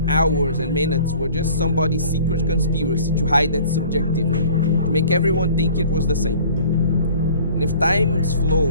hours and minutes were just somebody's secret conspiracy to hide that subjectivity, to make everyone think it was the same. And if time's flow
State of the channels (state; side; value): inverted; both; correlation -0.49